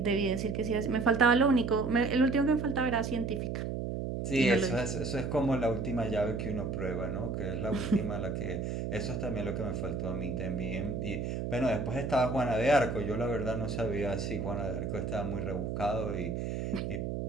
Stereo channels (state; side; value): noise; right; hum, 3 dB below the sound